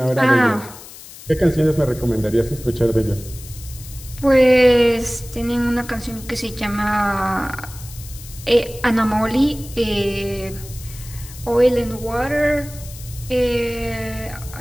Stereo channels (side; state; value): left; noise; hiss, 16 dB below the sound